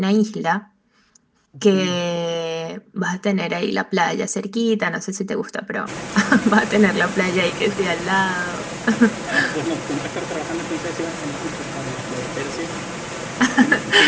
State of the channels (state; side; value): identical; both; correlation 1.00